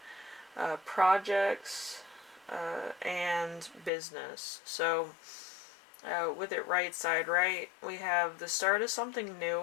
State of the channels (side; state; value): right; drops out; at 3.9 s